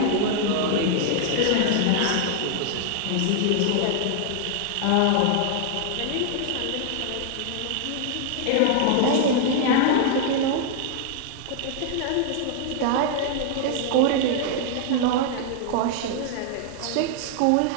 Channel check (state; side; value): different; both; correlation 0.00